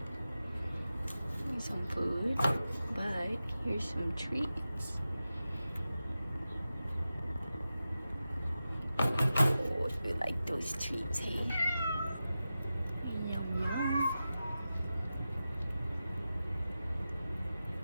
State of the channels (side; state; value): both; inverted; correlation -0.93